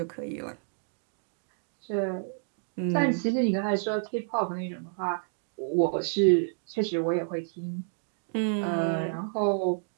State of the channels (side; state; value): left; silent; digital silence